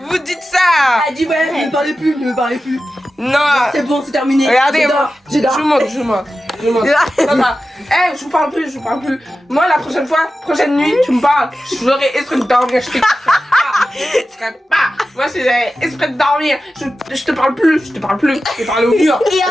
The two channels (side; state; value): both; normal; correlation 0.93